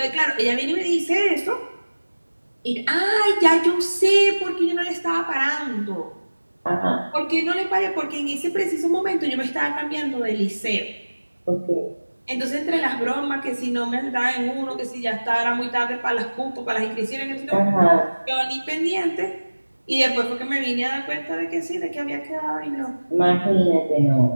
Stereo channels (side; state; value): both; inverted; correlation -1.00